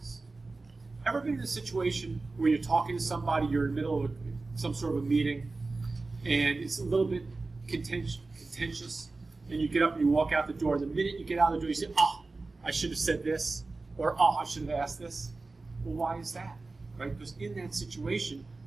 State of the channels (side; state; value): left; quieter; 3.6 dB